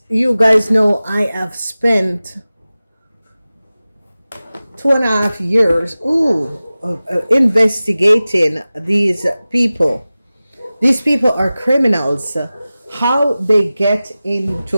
you guys know, I have spent 2.5 years investigating these people. These people are criminals. How they get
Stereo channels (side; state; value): both; inverted; correlation -0.97